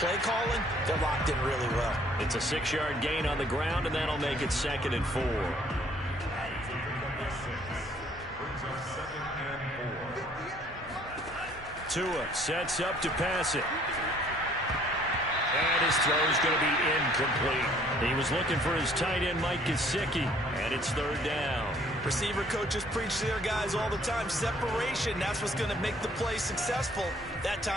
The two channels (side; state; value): both; normal; correlation 0.60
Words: calling, they're locked in really well. It's a 6-yard gain on the ground, and that'll make it 2nd and 4. Tua sets up to pass it. And his throw is going to be incomplete. He was looking for his tight end, Mike Gesicki, and it's third down. Receiver coaches preach to their guys all the time. Separation, that's what's going to make the play successful. That